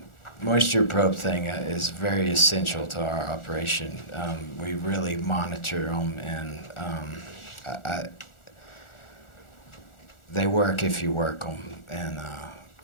moisture probe thing is very essential to our operation. We really monitor them, and they work if you work them, and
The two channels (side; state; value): right; late; 1.4 ms